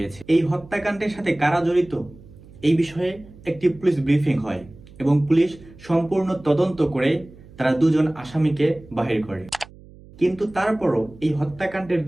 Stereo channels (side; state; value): right; noise; hum, 21 dB below the sound